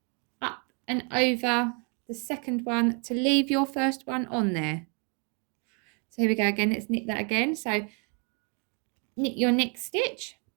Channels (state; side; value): quieter; left; 35.0 dB